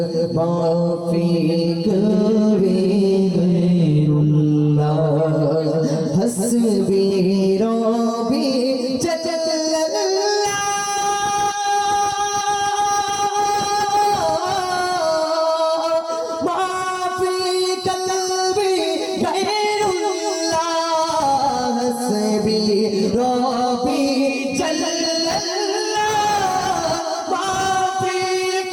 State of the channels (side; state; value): both; identical; correlation 1.00